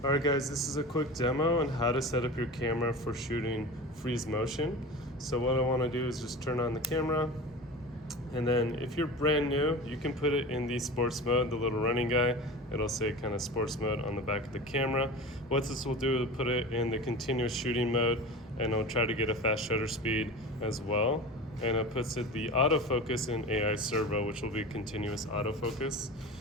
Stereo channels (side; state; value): both; normal; correlation 0.32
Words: Alright guys, this is a quick demo on how to set up your camera for shooting freeze motion. So what I want to do is just turn on the camera, and then if you're brand new, you can put it in the sports mode, the little running guy. It'll say kind of sports mode on the back of the camera. What this will do is put it in the continuous shooting mode, and it'll try to get a fast shutter speed as well. And it puts it the autofocus in AI servo, which will be continuous autofocus.